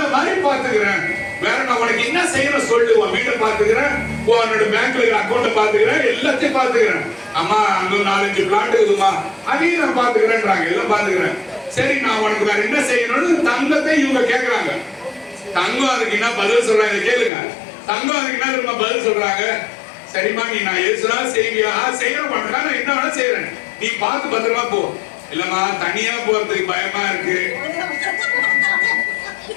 மாதிரி பாத்துக்கிறேன், வேற நான் உனக்கு என்ன செய்யணும் சொல்லு, உன் வீட்டை பாத்துக்கிறேன், உன்னோட பேங்க்ல அக்கௌண்ட பாத்துக்கிறேன், எல்லாத்தையும் பாத்துக்கிறேன். அம்மா அங்க 4-5 பிளாட் இருக்குமா, அதையும் நான் பாத்துக்கிறேன்றாங்க, எல்லாம் பாத்துக்கிறேன். சரி நான் உனக்கு வேற என்ன செய்யணும்னு தங்கத்தை இவங்க கேக்குறாங்க. தங்கம் அதுக்கு என்ன பதில் சொல்றாங்க கேளுங்க. தங்கம் அதுக்கு என்ன திரும்ப பதில் சொல்றாங்க, சரிம்மா நீ நான் எதுனா செய்வியா? செய்யற மாட்டா, நான் என்ன வேணா செய்யறேன், நீ பார்த்து பத்திரமா போ. இல்லம்மா தனியா போறதுக்கு பயமா இருக்கு.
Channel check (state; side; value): drops out; right; at 17.3 s